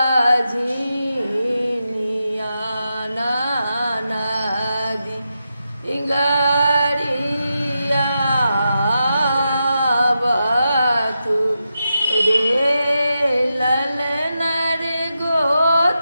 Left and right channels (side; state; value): both; inverted; correlation -0.87